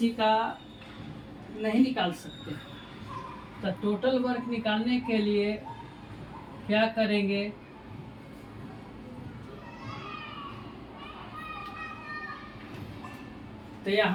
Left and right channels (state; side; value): identical; both; correlation 1.00